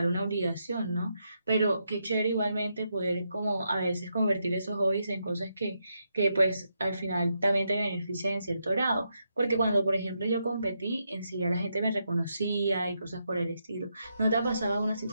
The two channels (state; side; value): inverted; both; correlation -0.82